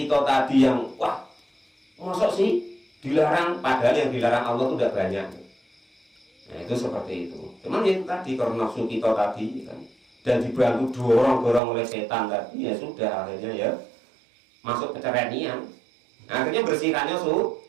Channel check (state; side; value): drops out; left; at 11.6 s